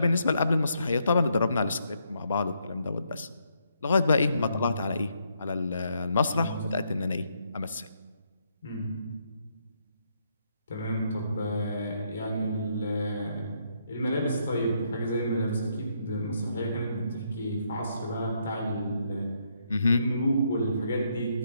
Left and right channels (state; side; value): inverted; both; correlation -0.75